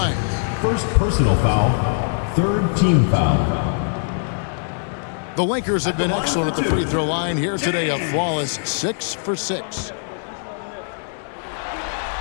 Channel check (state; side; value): silent; right; 65 dB below the other